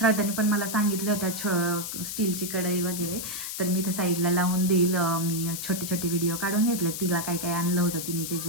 पण मला सांगितल्या होत्या, स्टीलची कढई वगैरे. तर मी इथं साईडला लावून देईल. मी छोटे व्हिडिओ काढून घेतले, तिला काय काय आणलं होतं, तिने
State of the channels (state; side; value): noise; left; hiss, 6 dB below the sound